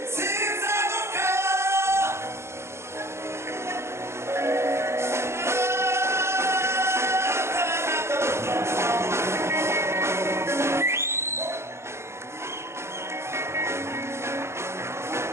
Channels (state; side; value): late; left; 0.13 ms